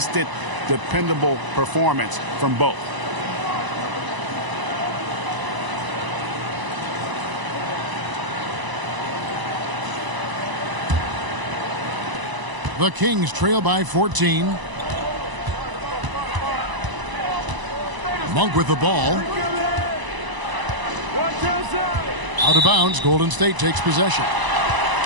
dependable performance from both. The Kings trail by 14. Monk with the ball. Out of bounds. Golden State takes possession.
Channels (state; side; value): late; left; 1.0 ms